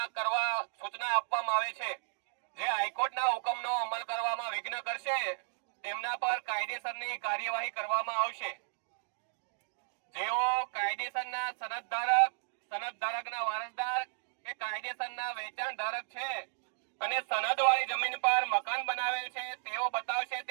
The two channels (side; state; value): left; silent; digital silence